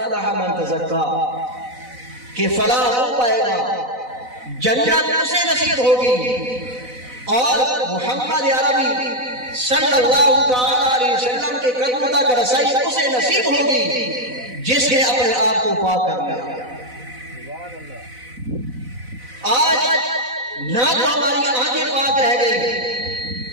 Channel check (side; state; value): left; late; 4.0 ms